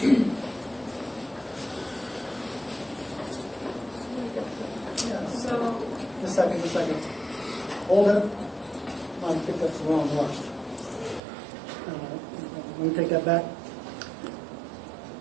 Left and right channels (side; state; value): left; drops out; at 11.2 s